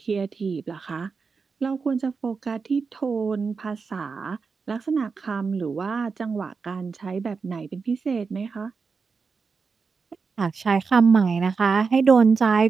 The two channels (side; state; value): left; quieter; 5.0 dB